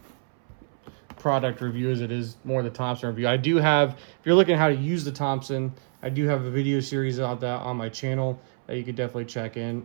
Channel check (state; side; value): silent; left; 61 dB below the other